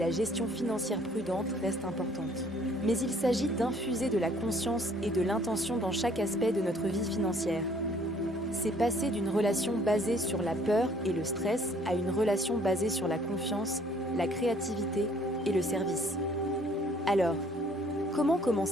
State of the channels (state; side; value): normal; both; correlation 0.60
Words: gestion financière prudente reste importante. Mais il s'agit d'infuser de la conscience et de l'intention dans chaque aspect de notre vie financière. C'est passer d'une relation basée sur la peur et le stress à une relation basée sur la confiance, la créativité et le service. Alors, comment